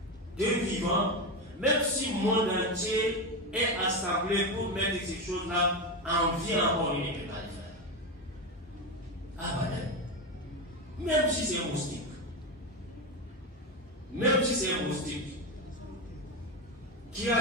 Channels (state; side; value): normal; both; correlation 0.15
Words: de vivant, même si le monde entier est assemblé pour mettre ces choses-là en vie encore, il ne peut pas le faire. Abadan. Même si c'est moustique. Même si c'est moustique. Qui